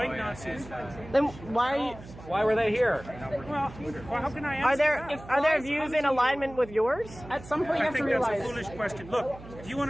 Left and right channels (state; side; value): noise; right; hum, 17 dB below the sound